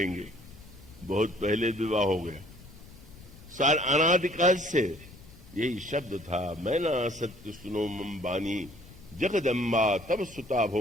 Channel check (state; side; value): noise; left; rumble, 20 dB below the sound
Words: बहुत पहले विवाह हो गया। सार अनादिकाल से यही शब्द था। मैना सत्य सुनो मम बानी, जगदम्बा तब सुता